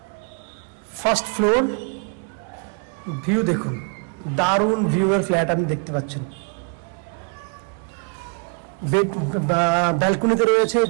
ফার্স্ট ফ্লোর, ভিউ দেখুন, দারুণ ভিউয়ের ফ্ল্যাট আপনি দেখতে পাচ্ছেন। ব্যালকনিতে রয়েছে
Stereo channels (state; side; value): quieter; left; 38.1 dB